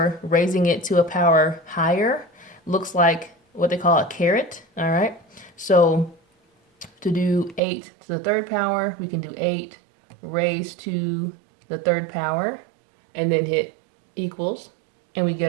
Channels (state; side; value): drops out; left; at 7.6 s